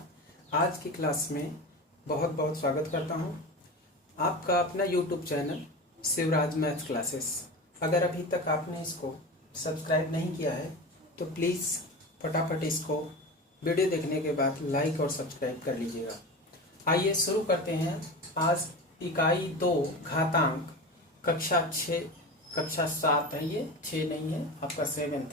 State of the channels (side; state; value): both; normal; correlation 0.28